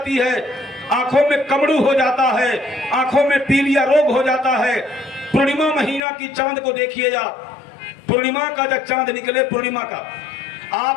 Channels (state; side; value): drops out; right; at 6.0 s